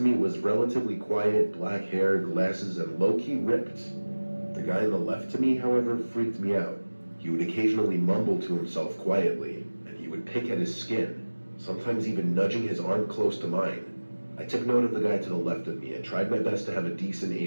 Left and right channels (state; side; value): inverted; both; correlation -1.00